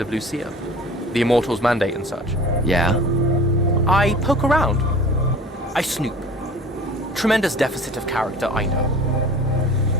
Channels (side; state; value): both; normal; correlation 0.43